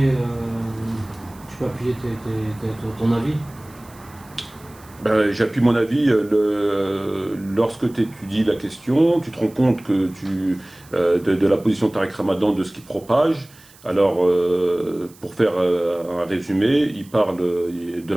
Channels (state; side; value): noise; right; hiss, 25 dB below the sound